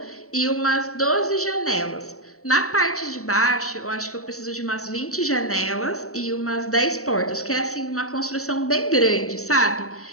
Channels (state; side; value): late; right; 0.64 ms